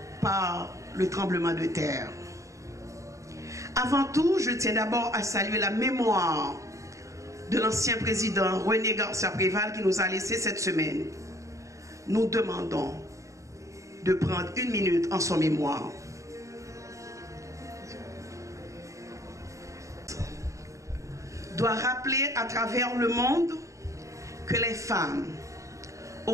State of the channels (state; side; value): late; left; 0.15 ms